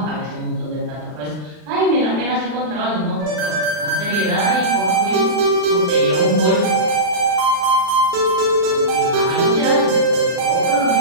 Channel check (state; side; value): late; left; 39 ms